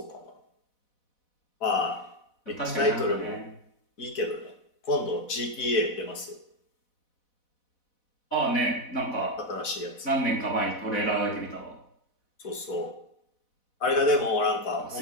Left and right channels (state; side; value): late; right; 4.1 ms